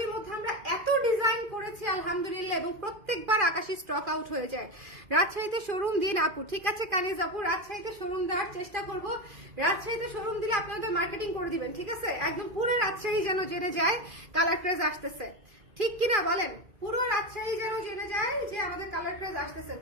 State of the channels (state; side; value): late; left; 2.4 ms